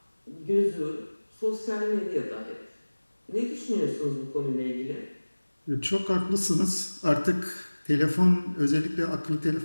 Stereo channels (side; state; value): both; inverted; correlation -1.00